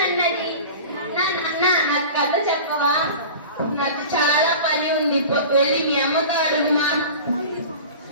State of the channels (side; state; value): both; inverted; correlation -0.37